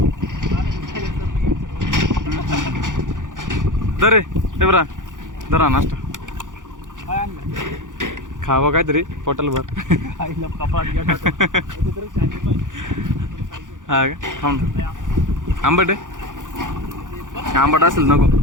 दरे ते बरा धरा नाश्ता खावं काहीतरी पोटाला भर. हा का थांब. आंबट आहे आंबट असेल नको.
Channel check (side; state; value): left; late; 0.87 ms